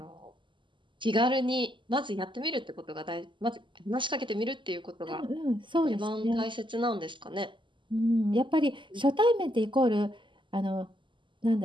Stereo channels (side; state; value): left; late; 0.24 ms